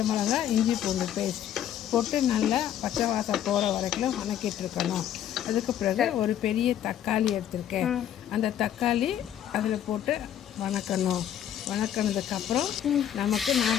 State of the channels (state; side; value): quieter; right; 10.5 dB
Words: மிளகாய் இஞ்சி பூண்டு பேஸ்ட் போட்டு நல்லா பச்சை வாசம் போகிற வரைக்கும் வதக்கிட்டுருக்கணும். அதுக்கு பிறகு ஒரு பெரிய தக்காளி எடுத்திருக்கேன். அந்த தக்காளி அதில் போட்டு வணக்கினதுக்கப்புறம் நமக்கு